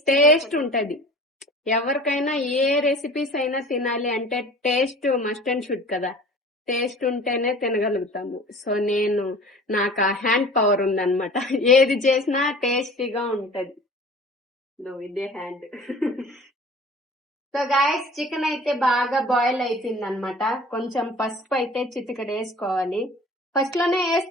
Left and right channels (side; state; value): both; normal; correlation 0.43